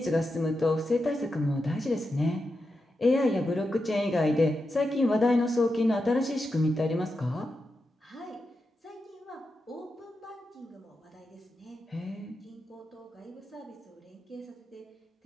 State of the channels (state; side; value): normal; both; correlation 0.88